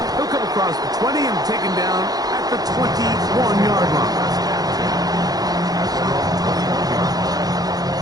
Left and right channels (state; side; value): late; left; 0.19 ms